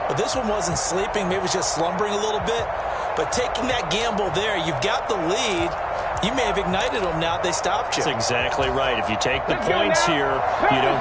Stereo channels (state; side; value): identical; both; correlation 1.00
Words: But this one wasn't sleeping. Maybe it was just slumbering a little bit. But taking that gamble there, you've got the lead. You may have ignited them now. They stopped you. That's exactly right. If you take the points here, you